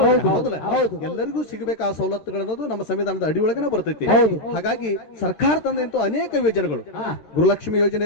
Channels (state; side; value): late; right; 13 ms